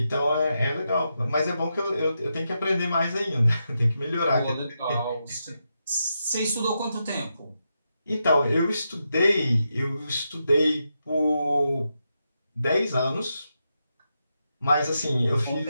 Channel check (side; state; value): both; inverted; correlation -0.85